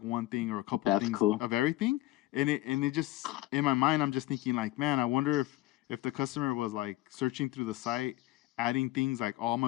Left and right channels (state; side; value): quieter; right; 17.2 dB